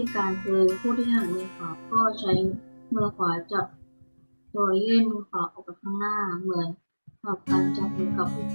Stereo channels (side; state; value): both; inverted; correlation -1.00